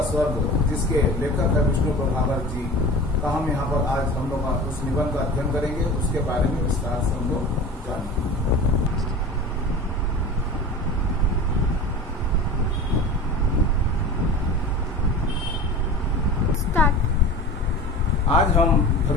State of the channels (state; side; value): normal; both; correlation 0.35